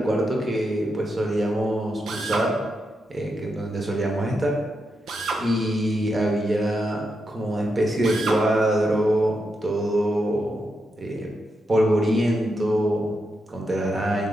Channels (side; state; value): both; normal; correlation 0.84